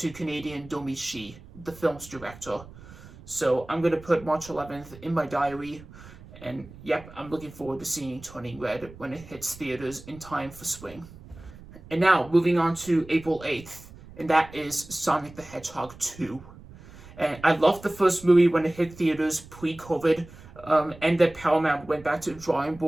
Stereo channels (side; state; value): right; noise; rumble, 19 dB below the sound